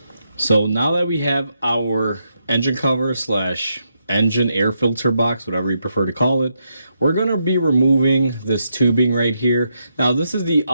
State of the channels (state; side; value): inverted; both; correlation -0.81